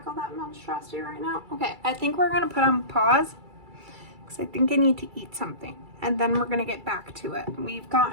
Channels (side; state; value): left; late; 2.3 ms